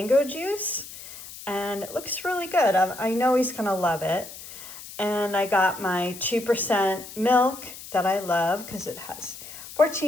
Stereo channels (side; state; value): left; noise; hiss, 14 dB below the sound